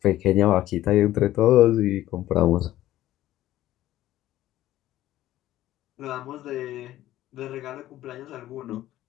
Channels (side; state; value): right; quieter; 14.3 dB